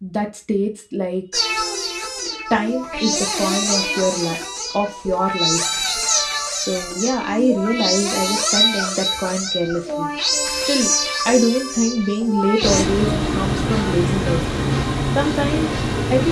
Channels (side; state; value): both; identical; correlation 1.00